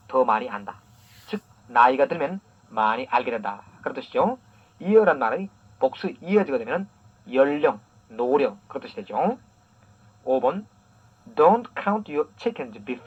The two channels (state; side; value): identical; both; correlation 1.00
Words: 더 많이 안다. 즉 나이가 들면 많이 알게 된다. 그런 뜻이죠. year란 말의 복수 years가 되면 연령, 노령 그런 뜻이 되죠. 5번 Don't count your chickens